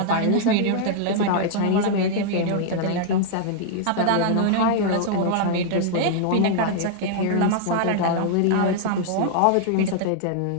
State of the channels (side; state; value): both; different; correlation -0.01